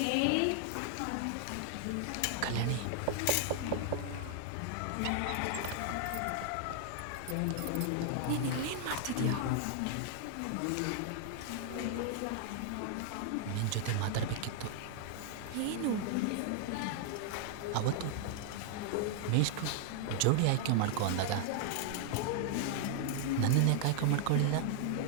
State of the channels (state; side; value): different; both; correlation 0.00